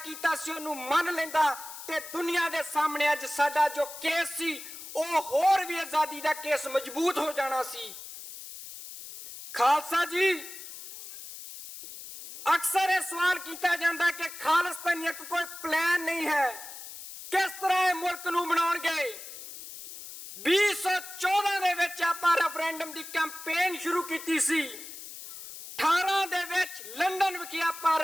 ਸੀ ਉਹਨੂੰ ਮੰਨ ਲੈਂਦਾ ਤੇ ਦੁਨੀਆ ਦੇ ਸਾਹਮਣੇ ਅੱਜ ਸਾਡਾ ਜੋ ਕੇਸ ਸੀ ਉਹ ਹੋਰ ਵੀ ਆਜ਼ਾਦੀ ਦਾ ਕੇਸ ਮਜ਼ਬੂਤ ਹੋ ਜਾਣਾ ਸੀ। ਖਾਲਸਾ ਜੀ, ਅਕਸਰ ਇਹ ਸਵਾਲ ਕੀਤਾ ਜਾਂਦਾ ਕਿ ਖਾਲਿਸਤਾਨੀਅਤ ਕੋਈ ਪਲਾਨ ਨਹੀਂ ਹੈ, ਕਿਸ ਤਰ੍ਹਾਂ ਇਹ ਮੁਲਕ ਨੂੰ ਬਣਾਉਣਗੇ। 2014 ਦੇ ਵਿੱਚ ਆਪਾਂ ਰੈਫਰੈਂਡਮ ਦੀ ਕੈਂਪੇਨ ਸ਼ੁਰੂ ਕੀਤੀ ਸੀ। 18 ਦੇ ਵਿੱਚ ਲੰਡਨ ਵਿਖੇ ਆਪਾਂ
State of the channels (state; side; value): noise; left; hiss, 12 dB below the sound